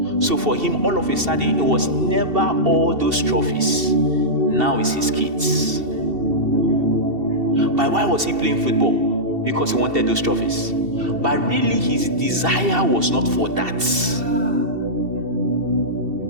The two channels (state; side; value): late; left; 2.7 ms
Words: So for him, all of a sudden, it was never all those trophies. Now it's his kids. But why was he playing football? Because he wanted those trophies. But really, his desire was not for that.